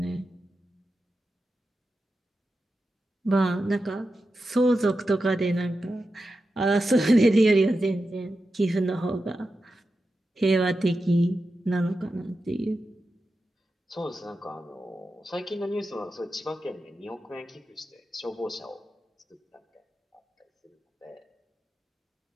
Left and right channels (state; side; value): normal; both; correlation 0.91